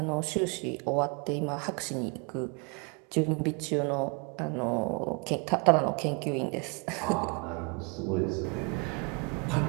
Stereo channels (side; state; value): left; quieter; 32.9 dB